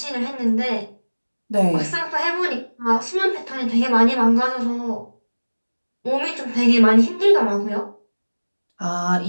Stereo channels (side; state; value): both; inverted; correlation -1.00